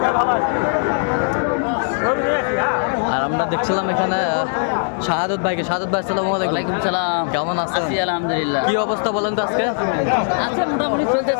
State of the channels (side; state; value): right; silent; digital silence